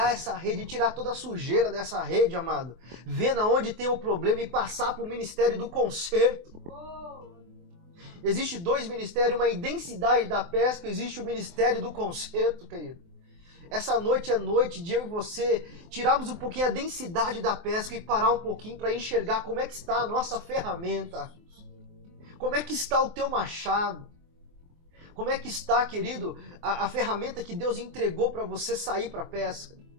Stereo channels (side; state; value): left; late; 24 ms